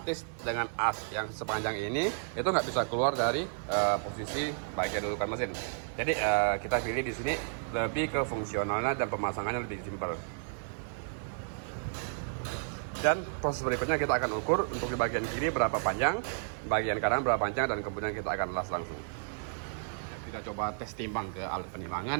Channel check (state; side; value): silent; left; digital silence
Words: dengan as yang sepanjang ini itu nggak bisa keluar dari posisi bagian dudukan mesin. Jadi kita pilih di sini lebih ke fungsionalnya dan pemasangannya lebih simpel. Dan proses berikutnya kita akan ukur untuk di bagian kiri berapa panjang, bagian kanan berapa panjang, dan kemudian kita akan las langsung. kita coba tes timbang ke alat